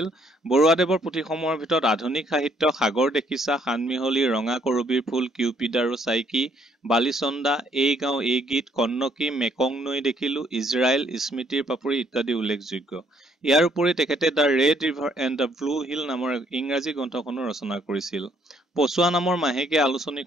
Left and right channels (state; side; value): normal; both; correlation 0.68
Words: বৰুৱাদেৱৰ পুথিসমূহৰ ভিতৰত আধুনিক সাহিত্য, সাগৰ দেখিছা, সানমিহলি, ৰঙা কৰবীৰ ফুল, কিউপিড আৰু চাইকি, বালিচন্দা, এই গাঁও এই গীত, কন্নকী, মেকং নৈ দেখিলো, ইজৰাইল, স্মৃতিৰ পাপৰি ইত্যাদি উল্লেখযোগ্য। ইয়াৰ উপৰি তেখেতে the red river and the blue hill নামৰ ইংৰাজী গ্ৰন্থখনো ৰচনা কৰিছিল। পছোৱা নামৰ মাহেকীয়া